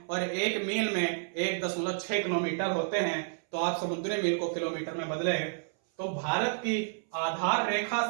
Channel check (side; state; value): left; silent; 58 dB below the other